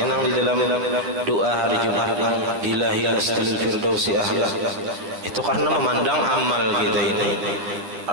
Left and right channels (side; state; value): left; late; 10 ms